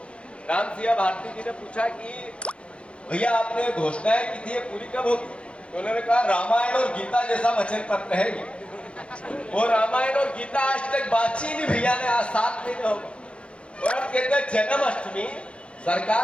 राम सिंह भारती जी ने पूछा कि भैया आपने घोषणाएं की थी, ये पूरी कब होगी? तो उन्होंने कहा रामायण और गीता जैसा वचन पत्र है ये। वो रामायण और गीता आज तक बातचीत नहीं भैया ने, आज 7 महीने हो गए, और अब कहते हैं जन्माष्टमी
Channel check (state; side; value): late; right; 0.059 ms